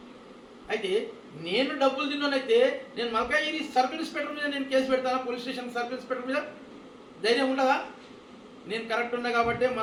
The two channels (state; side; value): identical; both; correlation 1.00